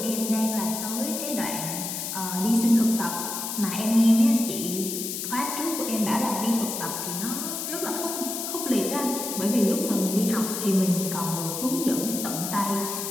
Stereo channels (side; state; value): left; noise; hiss, 4 dB below the sound